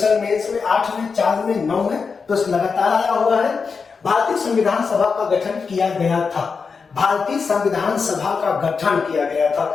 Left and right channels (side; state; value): right; quieter; 5.2 dB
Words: मेंस में 8 में, 4 में, 9 में, प्रश्न लगातार आया हुआ है। भारतीय संविधान सभा का गठन किया गया था, भारतीय संविधान सभा का गठन किया गया था।